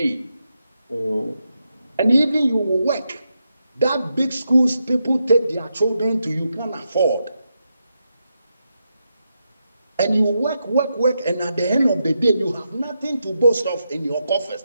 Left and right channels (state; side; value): inverted; both; correlation -0.85